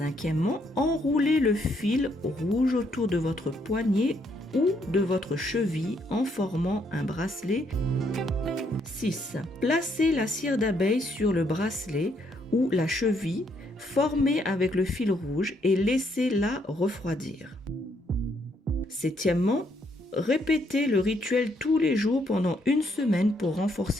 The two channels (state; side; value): normal; both; correlation 0.72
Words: enroulez le fil rouge autour de votre poignet ou de votre cheville en formant un bracelet. 6. Placez la cire d'abeille sur le bracelet ou la cheville formée avec le fil rouge et laissez-la refroidir. Septièmement, répétez le rituel tous les jours pendant une semaine pour